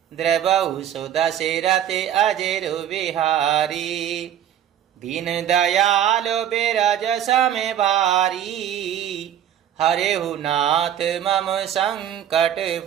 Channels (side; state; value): left; quieter; 10.4 dB